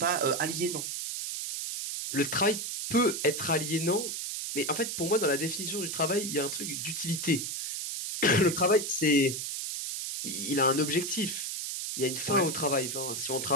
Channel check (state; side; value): noise; right; hiss, 4 dB below the sound